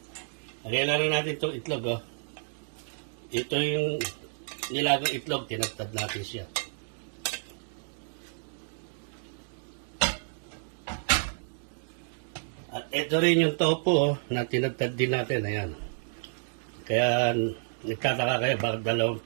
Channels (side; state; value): left; silent; digital silence